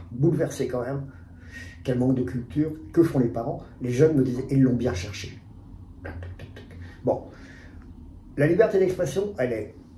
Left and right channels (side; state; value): both; identical; correlation 1.00